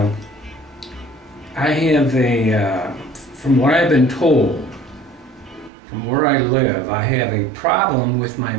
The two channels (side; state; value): left; drops out; at 5.7 s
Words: I have from what I've been told, from where I live, I have a problem with my